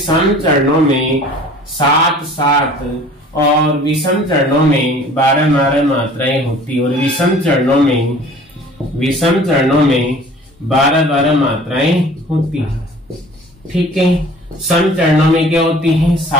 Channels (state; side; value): normal; both; correlation 0.48